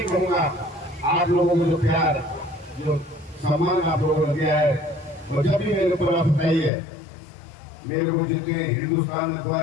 कहूँगा, आप लोगों को जो प्यार, जो सम्मान आप लोगों ने दिया है, और जब भी मेरे ऊपर आप बताइए, मेरे को जितने हिंदुस्तान में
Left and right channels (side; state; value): right; drops out; at 6.7 s